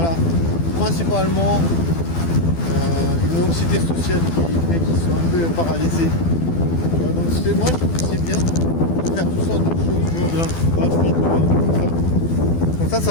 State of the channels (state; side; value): late; right; 12 ms